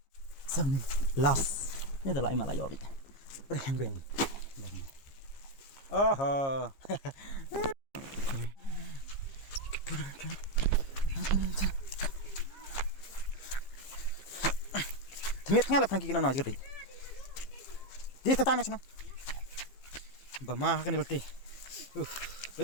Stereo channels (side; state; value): right; late; 15 ms